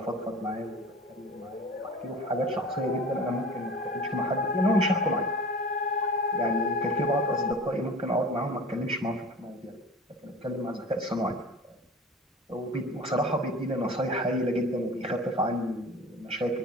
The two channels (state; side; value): normal; both; correlation 0.39